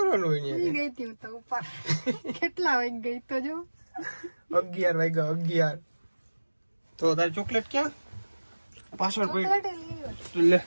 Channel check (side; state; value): both; inverted; correlation -1.00